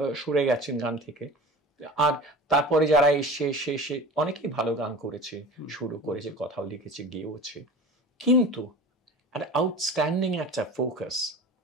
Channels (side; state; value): both; normal; correlation 0.37